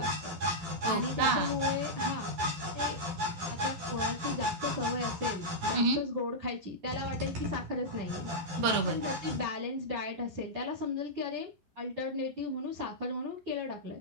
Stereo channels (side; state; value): left; late; 12 ms